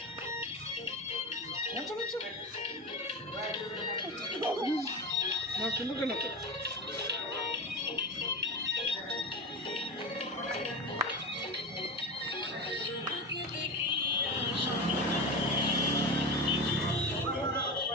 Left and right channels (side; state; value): both; normal; correlation 0.23